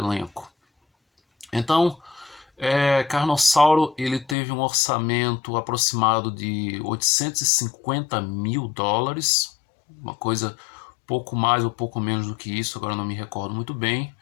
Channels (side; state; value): right; drops out; at 4.4 s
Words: Então, Carnossauro ele teve um orçamento aproximado de 850 mil dólares, uma coisa pouco mais ou pouco menos do que isso, agora não me recordo muito bem.